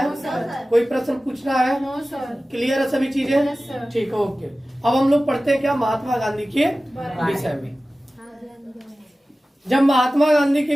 नो सर। है? कोई प्रश्न पूछना है? No sir. क्लियर है सभी चीजें? Yes sir. ठीक है, ओके। अब हम लोग पढ़ते हैं क्या महात्मा गांधी के विषय में। जब महात्मा गांधी के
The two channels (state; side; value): normal; both; correlation 0.96